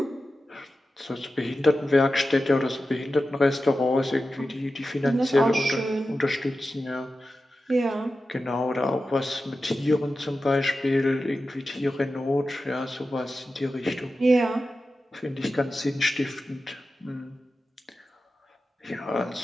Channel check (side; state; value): both; normal; correlation 0.93